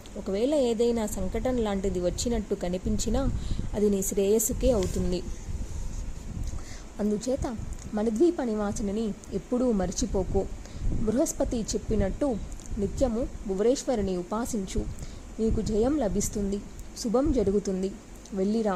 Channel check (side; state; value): both; identical; correlation 1.00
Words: ఒకవేళ ఏదైనా సంకటం లాంటిది వచ్చినట్టు కనిపించినా అది నీ శ్రేయస్సుకే అవుతుంది. అందుచేత మణిద్వీప నివాసిని ఎప్పుడూ మర్చిపోకు. బృహస్పతి చెప్పినట్టు నిత్యము భువనేశ్వరిని ఉపాసించు. నీకు జయం లభిస్తుంది, శుభం జరుగుతుంది. వెళ్ళిరా